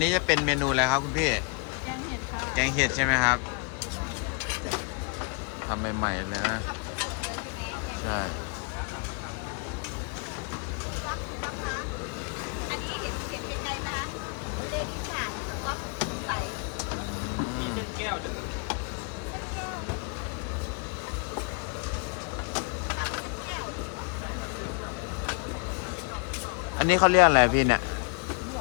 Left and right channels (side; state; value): right; quieter; 35.4 dB